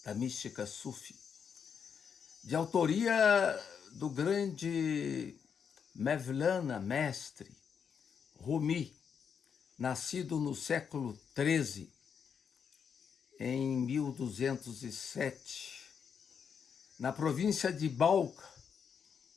da mística Sufi, de autoria do grande Mevlana, mestre, Rumi, nascido no século XIII, em 1207, na província de Balkh,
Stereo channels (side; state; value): right; quieter; 7.0 dB